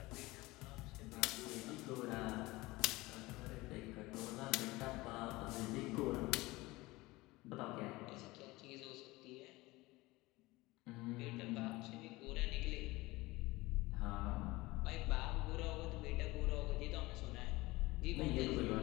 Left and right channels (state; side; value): quieter; right; 20.8 dB